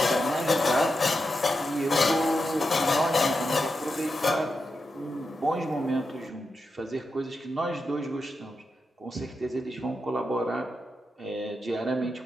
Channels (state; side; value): normal; both; correlation 0.88